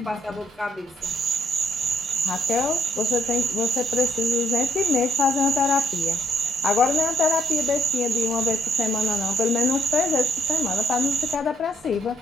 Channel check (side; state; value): both; normal; correlation 0.72